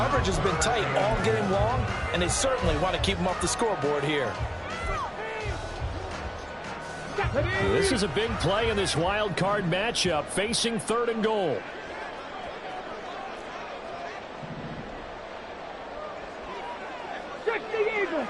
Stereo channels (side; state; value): both; identical; correlation 1.00